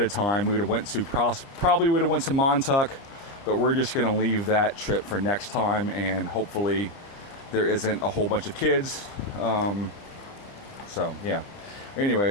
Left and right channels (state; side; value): late; right; 30 ms